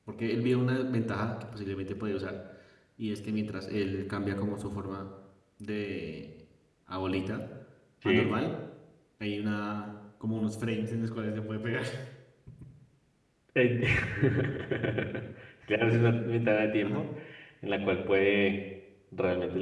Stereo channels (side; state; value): both; identical; correlation 1.00